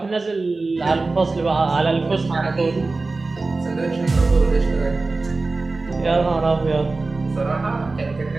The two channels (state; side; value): quieter; left; 3.6 dB